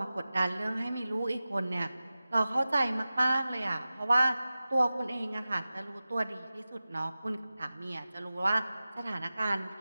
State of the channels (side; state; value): both; inverted; correlation -0.96